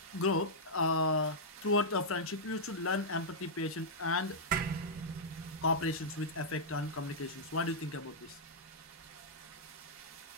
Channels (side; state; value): both; normal; correlation -0.10